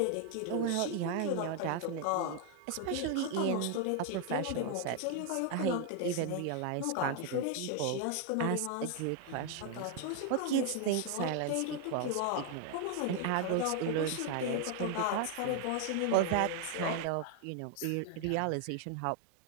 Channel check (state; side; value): different; both; correlation 0.00